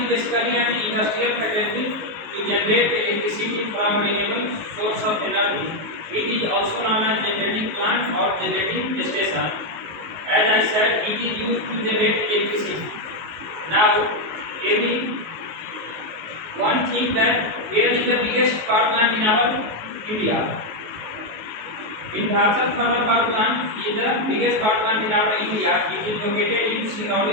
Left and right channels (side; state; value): left; late; 19 ms